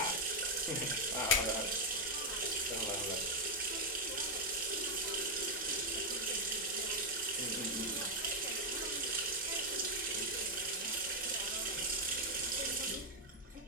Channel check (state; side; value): normal; both; correlation 0.01